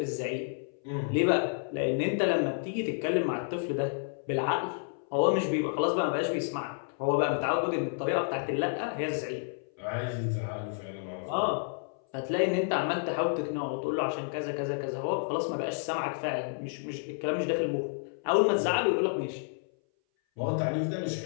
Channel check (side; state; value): right; silent; 58 dB below the other